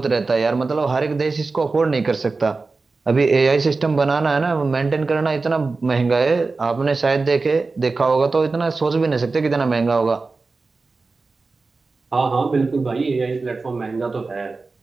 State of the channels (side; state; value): left; quieter; 3.9 dB